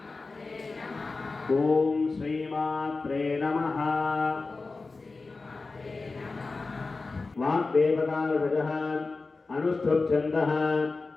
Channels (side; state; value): right; quieter; 3.8 dB